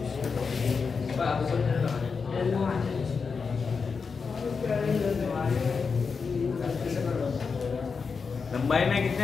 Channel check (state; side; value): quieter; right; 5.3 dB